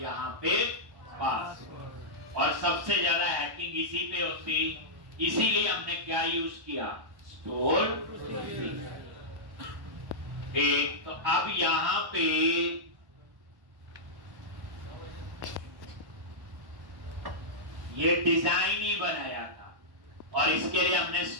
यहाँ पे पासवर्ड। और सबसे ज्यादा हैकिंग इसी पे होती, इसीलिए हमने क्या यूज किया, स्टोर। ठीक, तो अब यहाँ पे ये डिजाइन ही बनाया था और इसके लिए हमने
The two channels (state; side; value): late; left; 1.1 ms